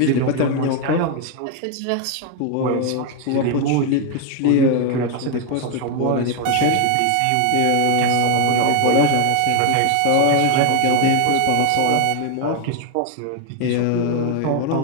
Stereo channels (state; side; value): different; both; correlation 0.01